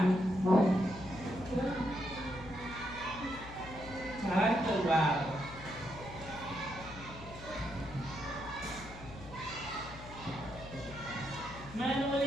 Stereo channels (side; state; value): left; noise; hum, 14 dB below the sound